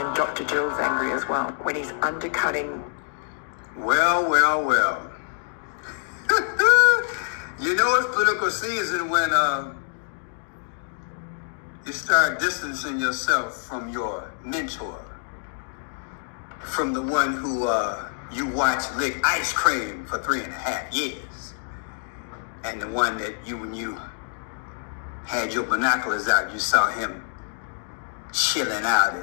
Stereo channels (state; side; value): silent; right; digital silence